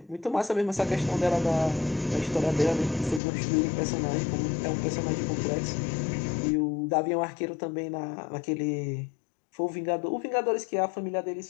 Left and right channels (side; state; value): right; drops out; at 3.2 s